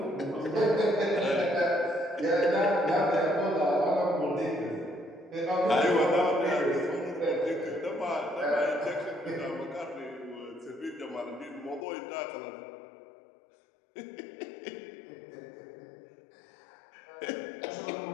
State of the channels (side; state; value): right; drops out; at 11.9 s